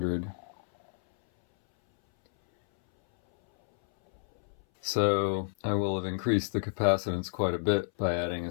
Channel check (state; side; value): silent; right; 58 dB below the other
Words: So I will have increased the capacitance quite a bit by adding